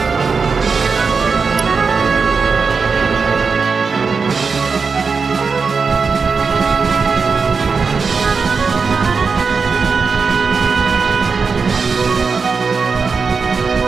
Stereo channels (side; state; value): left; quieter; 5.0 dB